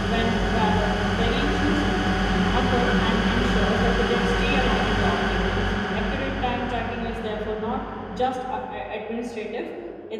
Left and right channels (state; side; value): identical; both; correlation 1.00